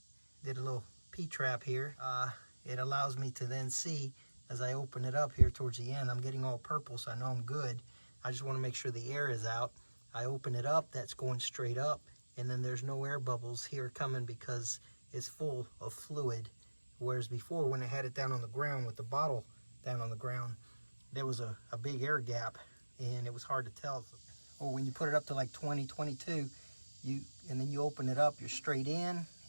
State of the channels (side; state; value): both; inverted; correlation -1.00